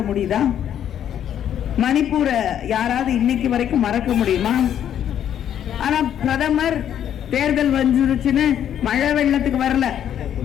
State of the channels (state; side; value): quieter; right; 9.9 dB